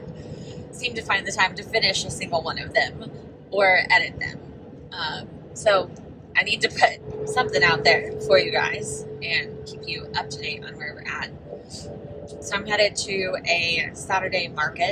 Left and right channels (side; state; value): both; identical; correlation 1.00